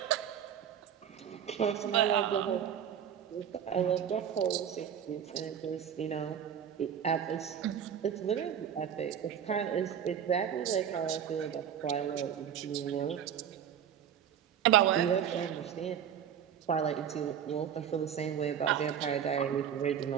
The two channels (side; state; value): left; quieter; 8.9 dB